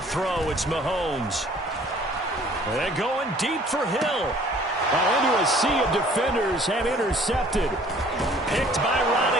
throw, it's Mahomes. And going deep for Hill. Into a sea of defenders and intercepted. Picked by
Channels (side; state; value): both; normal; correlation 0.54